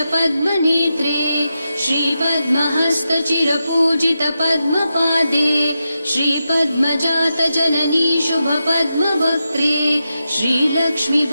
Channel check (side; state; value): both; inverted; correlation -0.89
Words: श्रीपद्महस्तचिरपूजित पद्मपादे श्रीपद्मजात जननी शुभपद्मवक्त्रे श्रीलक्ष्मी